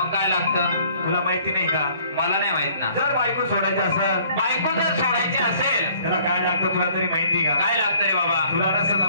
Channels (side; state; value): both; inverted; correlation -0.58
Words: काय लागतं तुला माहिती नाही का? मला नाही माहित ना। जर बायको सोडायची असेल बायको जर सोडायची असेल त्याला काय लागतं तुला तरी माहिती का? काय लागतं रे बाबा? तुला नसेल तर